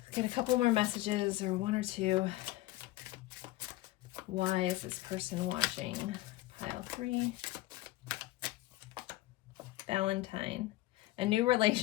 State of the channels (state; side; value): quieter; right; 17.6 dB